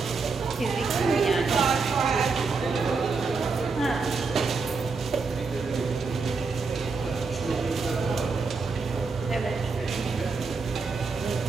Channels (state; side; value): quieter; left; 4.5 dB